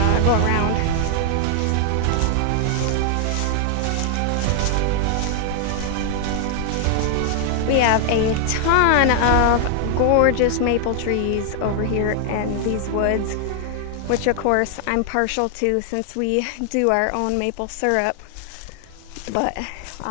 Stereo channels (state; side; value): different; both; correlation 0.00